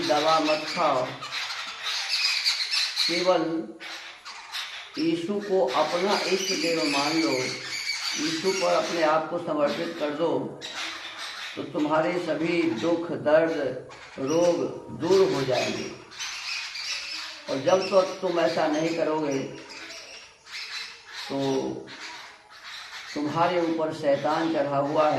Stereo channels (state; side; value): identical; both; correlation 1.00